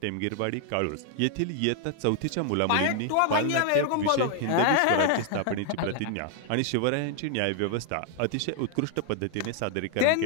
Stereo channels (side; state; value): both; different; correlation 0.00